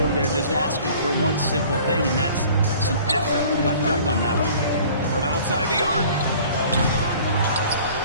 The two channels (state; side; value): inverted; both; correlation -0.49